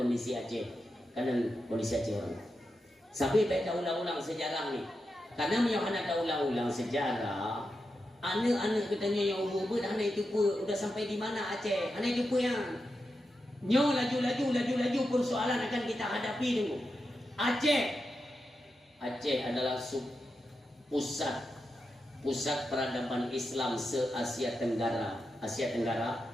kondisi Aceh, kalian kondisi Aceh orang. Sampai baca ulang-ulang sejarah nih. Karena anak tak ulang-ulang sejarah, anak-anak katanya yang ubud, anak itu pun udah sampai di mana Aceh, anak itu pun yang nyo laju persoalan akan kita hadapi dulu. Aceh adalah pusat peradaban Islam se-Asia Tenggara. Asia Tenggara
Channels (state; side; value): normal; both; correlation 0.88